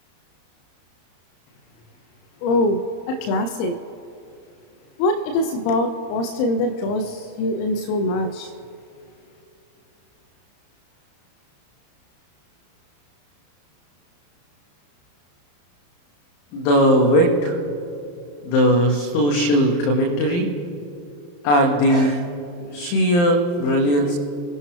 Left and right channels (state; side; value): late; right; 34 ms